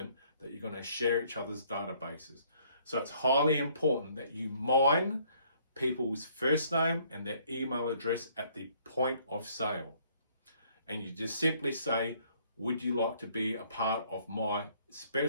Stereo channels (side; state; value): both; inverted; correlation -0.62